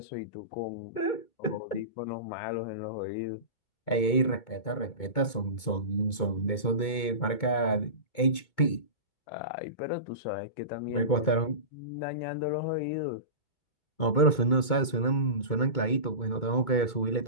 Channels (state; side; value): late; right; 2.2 ms